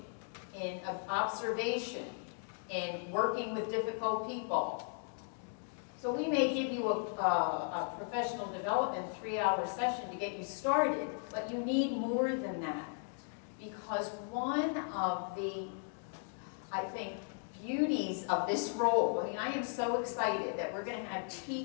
in observation, in working with difficult people. So we may give you a professional development 3-hour session to get you started, but you need more than that. Because one of the, I think, beauties of this role, I am so excited that we're going to have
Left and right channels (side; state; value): right; silent; 53 dB below the other